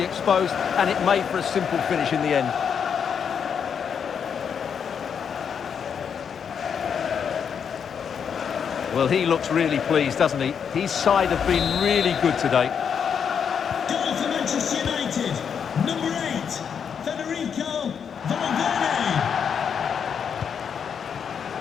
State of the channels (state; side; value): quieter; right; 7.2 dB